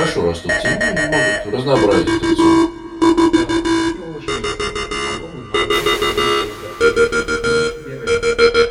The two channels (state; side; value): identical; both; correlation 1.00